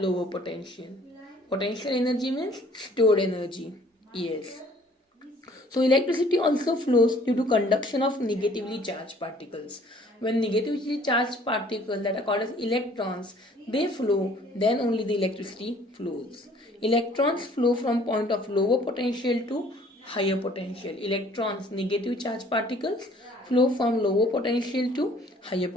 potential. Potential energy means stored energy. Yes. So electricity also flows due to conduction of negatively charged particles. When negatively charged particles that are called as electrons, they flow, then only the electricity flows. Electrons flow from point of lower potential to higher potential. Electrons, negative charged particles, flow from lower potential to higher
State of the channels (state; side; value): normal; both; correlation 0.56